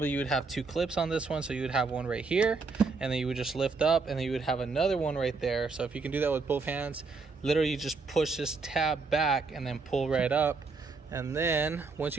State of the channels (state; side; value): quieter; left; 4.3 dB